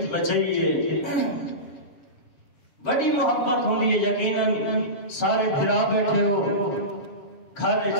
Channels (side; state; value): right; late; 7.6 ms